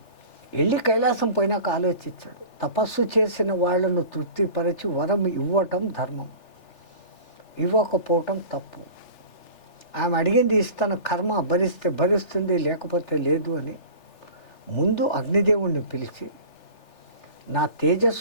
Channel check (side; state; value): right; late; 3.4 ms